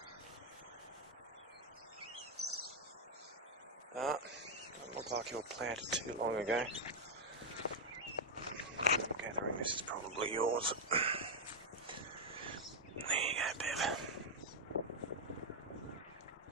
Doesn't look like you were planted too long ago. I'm gathering this is probably yours. There you go, Bev.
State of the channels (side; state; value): both; normal; correlation -0.01